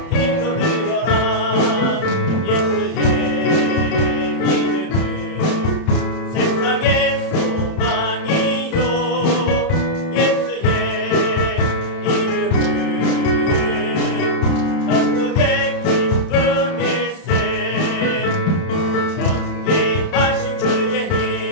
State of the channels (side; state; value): right; late; 31 ms